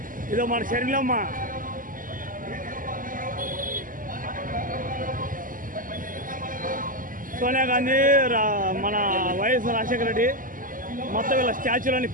ఇదో మన శరీరమ్మ సోనియా గాంధీ, మన వైఎస్ రాజశేఖర రెడ్డి మొత్తం వీళ్ళ స్టాచ్యూలన్నీ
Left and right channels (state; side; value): late; left; 0.40 ms